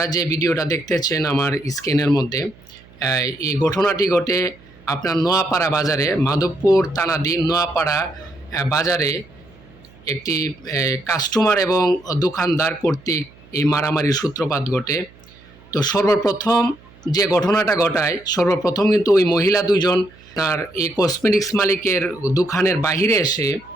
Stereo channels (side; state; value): right; noise; hum, 25 dB below the sound